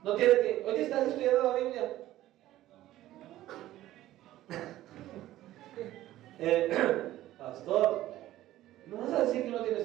no tienen que, oye, ¿estás estudiando la Biblia? Pastor, no vas a decir que no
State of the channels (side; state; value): left; quieter; 14.6 dB